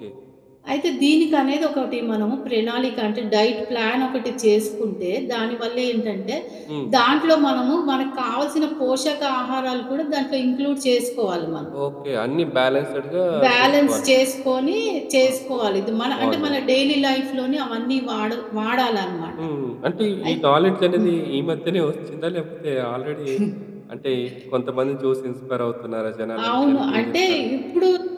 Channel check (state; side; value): identical; both; correlation 1.00